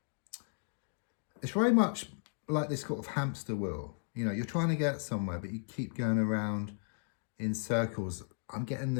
It's very much like this sort of hamster wheel. You know, you're trying to get somewhere, but you keep going around in circles. I'm getting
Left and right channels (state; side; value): silent; right; digital silence